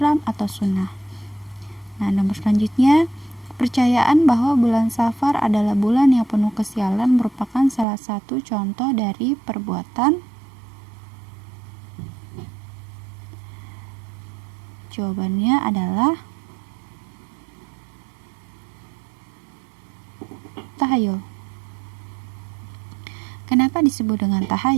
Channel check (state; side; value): drops out; left; at 7.9 s